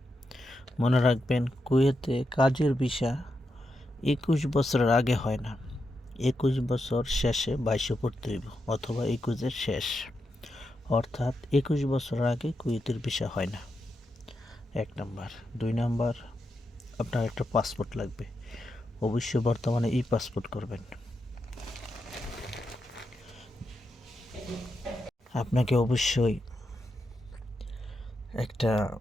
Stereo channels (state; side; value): normal; both; correlation 0.86